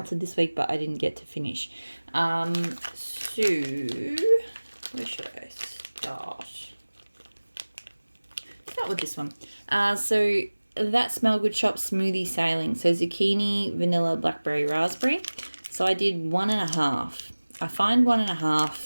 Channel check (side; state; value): both; inverted; correlation -1.00